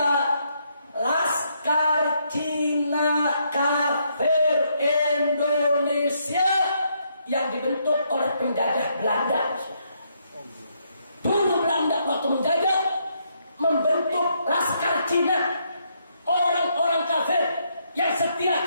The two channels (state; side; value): inverted; both; correlation -0.74